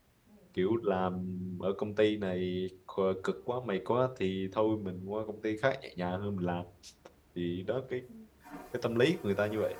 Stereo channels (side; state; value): both; identical; correlation 1.00